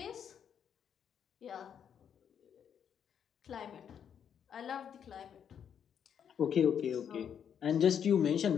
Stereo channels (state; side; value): quieter; right; 8.2 dB